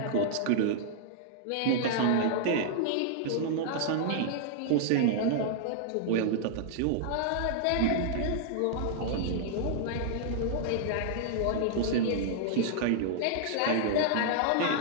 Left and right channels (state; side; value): different; both; correlation -0.01